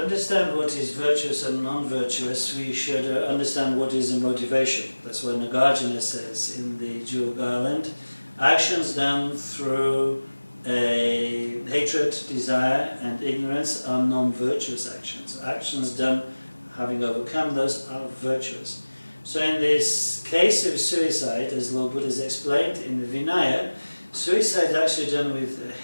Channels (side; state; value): both; inverted; correlation -1.00